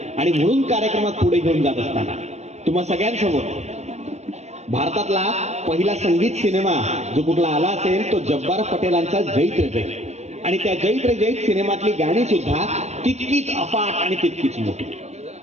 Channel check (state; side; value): late; left; 0.32 ms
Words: आणि म्हणून कार्यक्रमात पुढे घेऊन जात असताना तुम्हा सगळ्यांसमोर भारतातला पहिला संगीत सिनेमा जो कुठला आला असेल तो जब्बार पटेलांचा जैत रे जैत आणि त्या जैत रे जैत सिनेमातली गाणी सुद्धा तितकीच अफाट आणि तितकीच मोठी.